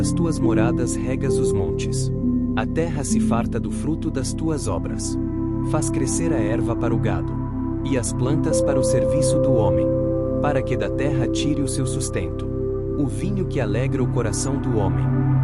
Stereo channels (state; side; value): identical; both; correlation 1.00